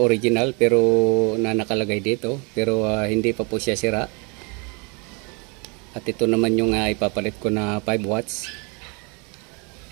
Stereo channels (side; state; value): left; quieter; 32.4 dB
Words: pero nakalagay dito, pero hindi pa po siya sira. At ito naman yung ipapalit ko na 5 watts.